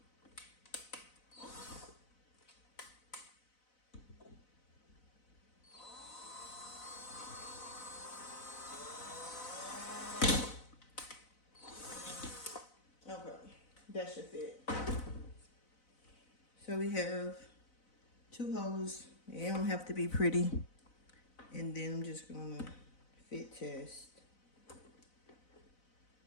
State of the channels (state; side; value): late; right; 4.0 ms